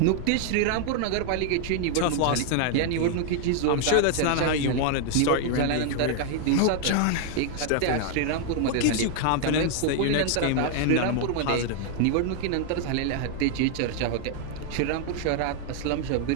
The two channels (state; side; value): different; both; correlation 0.00